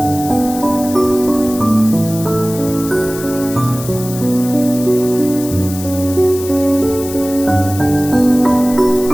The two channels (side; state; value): left; noise; hiss, 12 dB below the sound